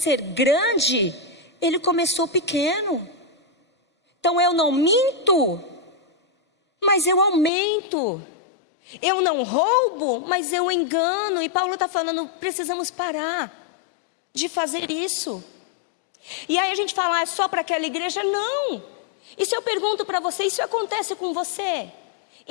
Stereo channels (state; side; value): drops out; right; at 7.5 s